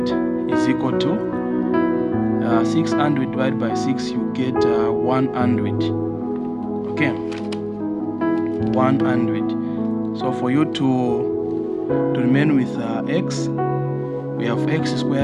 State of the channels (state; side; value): identical; both; correlation 1.00